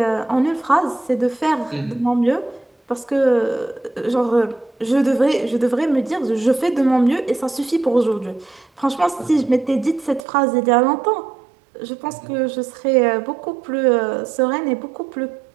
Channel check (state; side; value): drops out; left; at 10.2 s